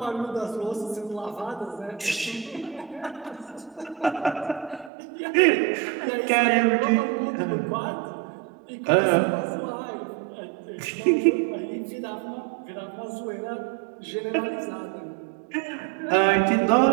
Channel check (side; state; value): left; drops out; at 4.9 s